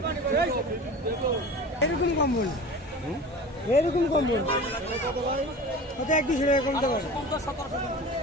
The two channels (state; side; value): normal; both; correlation 0.36